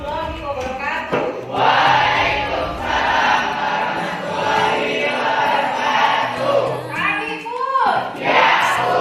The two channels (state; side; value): identical; both; correlation 1.00